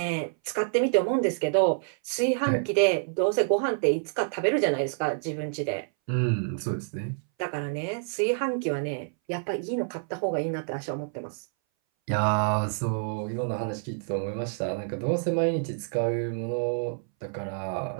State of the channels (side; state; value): left; silent; 59 dB below the other